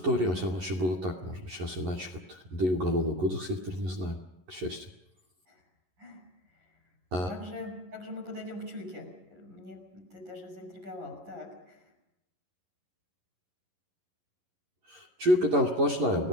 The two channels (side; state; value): left; late; 11 ms